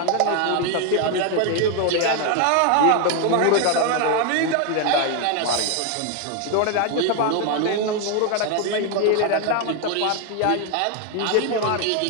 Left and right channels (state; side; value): different; both; correlation 0.01